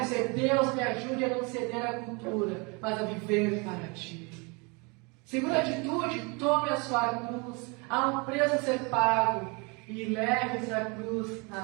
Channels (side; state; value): left; quieter; 30.0 dB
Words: dizer: Deus, me ajude a não ceder à cultura, mas a viver para Ti. Segunda atitude: tome a sua cruz. Há um preço a ser pago. E leve essa cruz